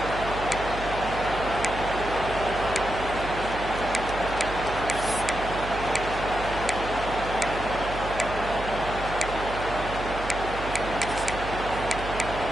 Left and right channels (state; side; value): noise; right; hum, 9 dB below the sound